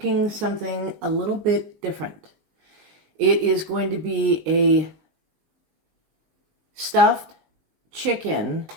something a little bit different. It is going to be a stuffed chicken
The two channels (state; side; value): late; left; 19 ms